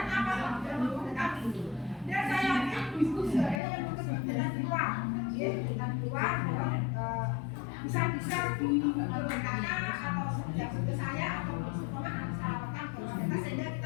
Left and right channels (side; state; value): right; drops out; at 3.6 s